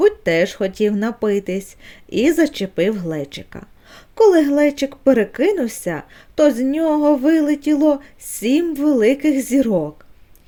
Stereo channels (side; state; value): both; identical; correlation 1.00